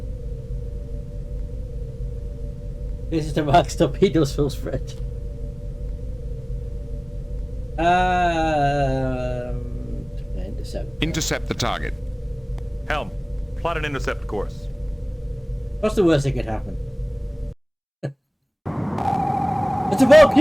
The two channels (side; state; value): both; identical; correlation 1.00